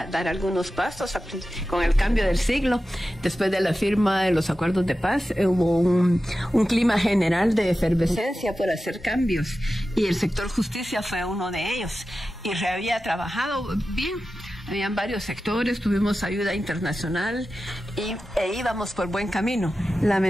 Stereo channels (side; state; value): both; normal; correlation 0.93